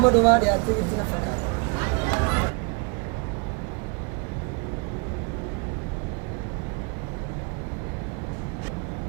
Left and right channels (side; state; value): left; quieter; 30.8 dB